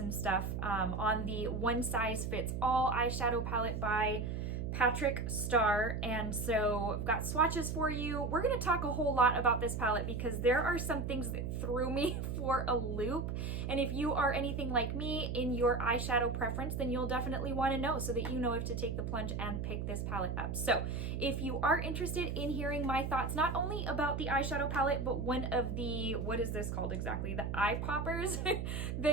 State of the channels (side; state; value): right; noise; hum, 3 dB below the sound